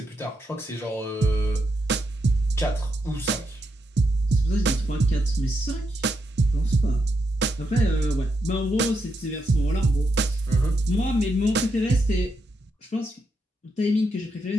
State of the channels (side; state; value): both; normal; correlation 0.82